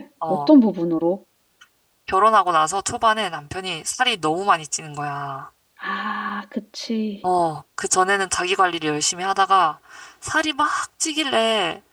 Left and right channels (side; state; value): both; identical; correlation 1.00